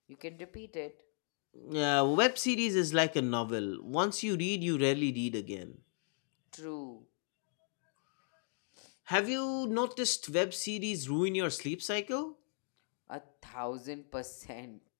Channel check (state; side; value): silent; right; 53 dB below the other